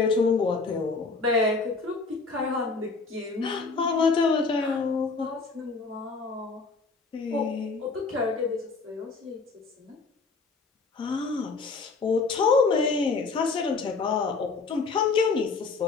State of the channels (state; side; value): quieter; right; 4.3 dB